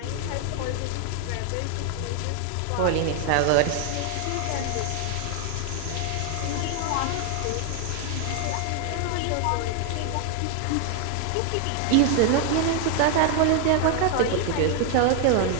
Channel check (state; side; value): different; both; correlation 0.00